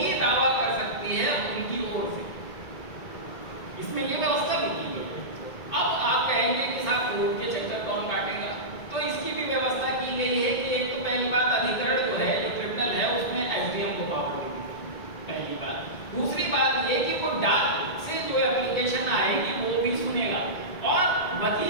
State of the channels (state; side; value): late; right; 1.9 ms